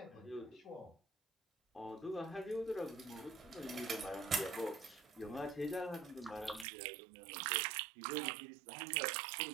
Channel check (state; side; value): drops out; left; at 6.7 s